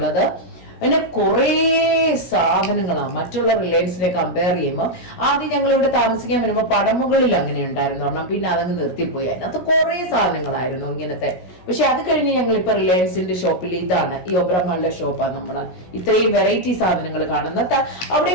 പിന്നെ കുറേ സാധനങ്ങളാണ് മറ്റുള്ള റിലയൻസിനെ കമ്പയർ ചെയ്യുമ്പോൾ. ആദ്യം ഞങ്ങൾ ഇവിടെ താമസിക്കാൻ വരുമ്പോൾ പടമുകളിൽ അങ്ങനെ ഉണ്ടായിരുന്നു പറഞ്ഞാൽ, പിന്നെ അതങ്ങ് നിർത്തിപ്പോയി. അതിനകത്ത് കുറേ സാധനങ്ങളായിരുന്നു ഇങ്ങനത്തെ. പക്ഷെ അത് കഴിഞ്ഞ് ഞങ്ങൾ ഇപ്പൊ റിലയൻസിന്റെ ഷോപ്പിൽ ഇതാണ്, ഈ ഒബ്രോമോളിന്റെ ഷോപ്പാണ് നമ്മൾ ഇത്രയും വെറൈറ്റി സാധനങ്ങൾ കാണുന്നത്. അവിടെ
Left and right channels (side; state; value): right; late; 17 ms